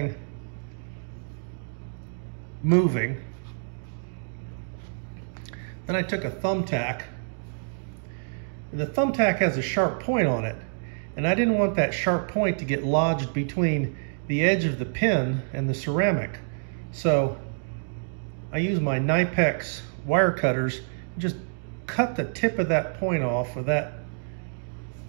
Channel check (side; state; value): left; silent; digital silence